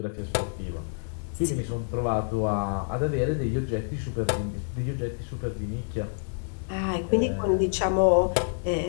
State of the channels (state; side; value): silent; right; 60 dB below the other